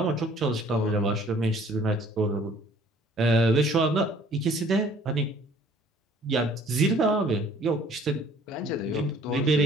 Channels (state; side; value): normal; both; correlation 0.55